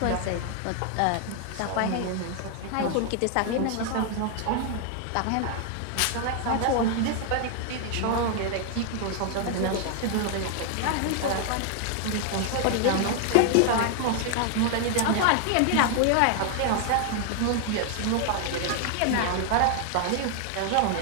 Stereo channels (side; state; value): both; different; correlation 0.00